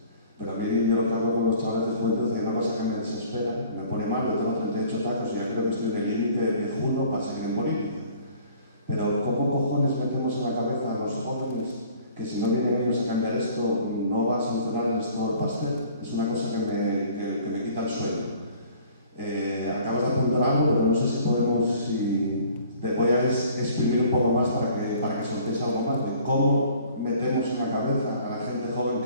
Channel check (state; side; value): inverted; both; correlation -0.53